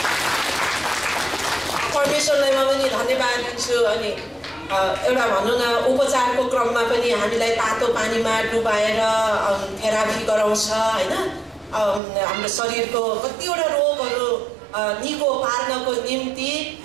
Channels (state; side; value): drops out; left; at 12.0 s